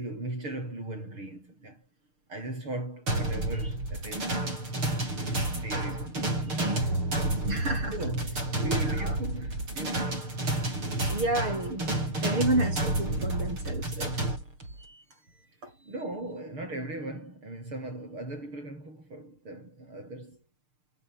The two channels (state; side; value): late; left; 6.6 ms